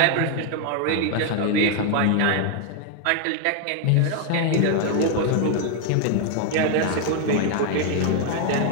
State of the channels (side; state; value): both; different; correlation 0.01